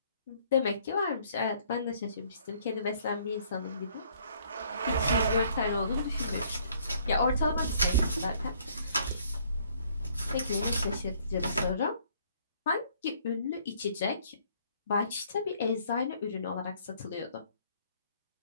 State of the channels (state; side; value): inverted; both; correlation -0.62